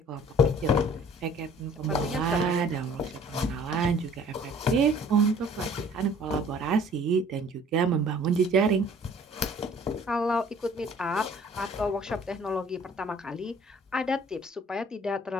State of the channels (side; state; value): both; normal; correlation 0.53